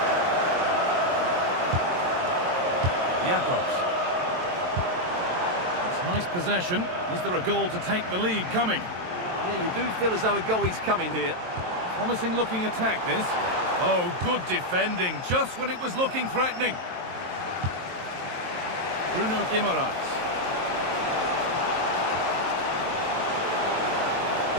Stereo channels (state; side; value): late; left; 23 ms